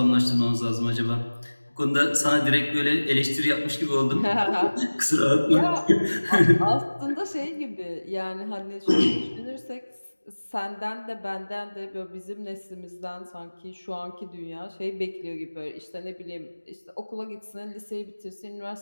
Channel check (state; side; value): inverted; both; correlation -1.00